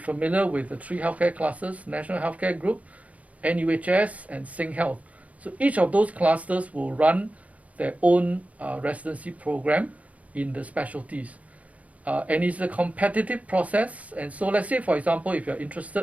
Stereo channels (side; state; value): left; late; 0.068 ms